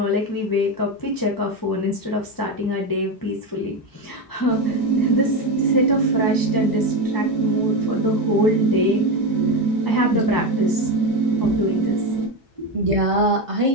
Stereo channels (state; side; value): late; right; 1.0 ms